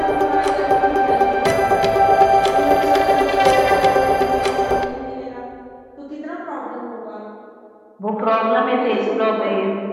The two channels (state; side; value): identical; both; correlation 1.00